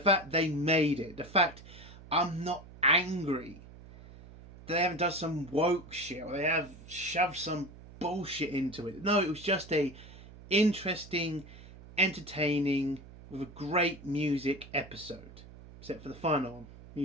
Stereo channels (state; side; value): noise; right; hum, 18 dB below the sound